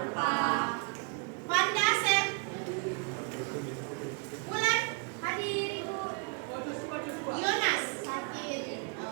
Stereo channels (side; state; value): left; quieter; 36.0 dB